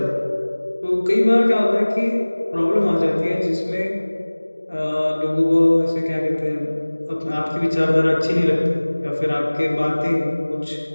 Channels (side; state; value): both; inverted; correlation -1.00